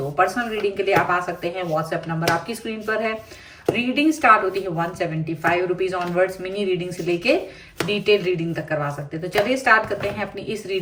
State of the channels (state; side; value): identical; both; correlation 1.00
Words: पर्सनल रीडिंग के लिए आप आ सकते हैं, व्हाट्सएप नंबर आपकी स्क्रीन पर है। रीडिंग स्टार्ट होती है 175 रुपीज ऑनवर्ड्स। मिनी रीडिंग से लेके डिटेल रीडिंग तक करवा सकते हैं। तो चलिए स्टार्ट करते हैं अपनी इस